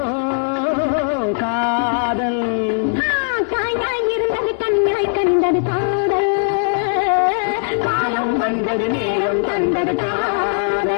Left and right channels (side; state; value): right; silent; 61 dB below the other